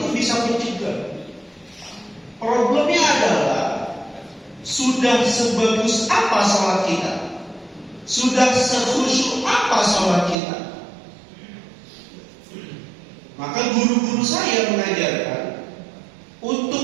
bisa mencegah. Problemnya adalah sudah sebagus apa sholat kita, sudah sekhusyuk apa sholat kita. Maka guru-guru saya mengajarkan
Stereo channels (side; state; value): left; drops out; at 10.4 s